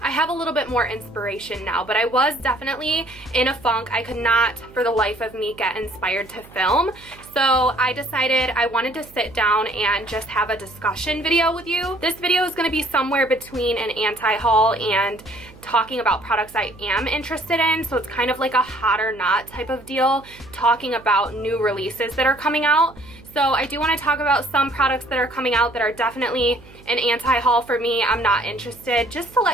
I have a little bit more inspiration now, but I was definitely in a funk. I could not for the life of me get inspired to film. So I decided I wanted to sit down and just have a discussion video with you. This video is going to be somewhere between an anti-haul and talking about products I am interested in. So it's kind of like a hot or not type of deal, talking about new releases that are coming out. So I do want to talk about some products that are coming out that are definitely an anti-haul for me. I'm not interested. Just to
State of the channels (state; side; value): noise; right; hum, 22 dB below the sound